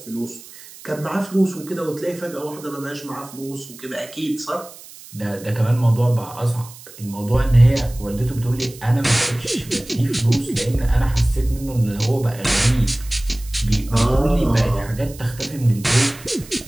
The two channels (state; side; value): noise; right; hiss, 18 dB below the sound